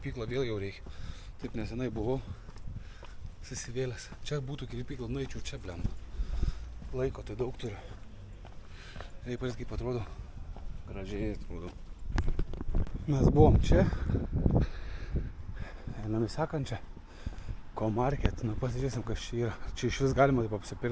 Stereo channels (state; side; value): identical; both; correlation 1.00